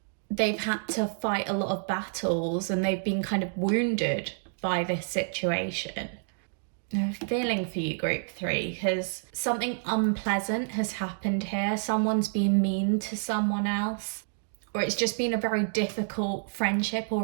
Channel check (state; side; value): silent; left; digital silence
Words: they've had to fight a lot of battles and they've been kind of wounded by this situation. I'm feeling for you, group 3, because something unpleasant has happened here. Someone's been mean to someone else. Or it's just been a very difficult friendship or